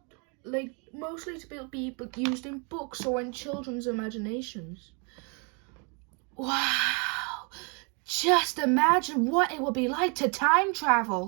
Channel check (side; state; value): left; quieter; 34.9 dB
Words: mostly to be used in books or in children's imaginations. Wow! Just imagine what it would be like to time